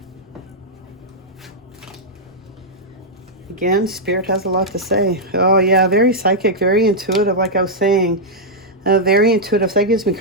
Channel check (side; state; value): both; normal; correlation -0.06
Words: Again, Spirit has a lot to say. Oh yeah, very psychic, very intuitive, like I was saying. Very intuitive. So that gives me